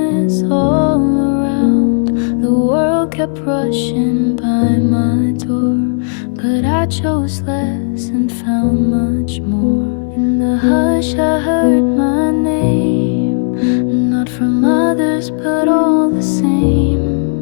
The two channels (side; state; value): right; silent; digital silence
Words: all around. The world kept rushing by my door, but I chose less and found much more. In the hush I heard my name, not from others but all the same.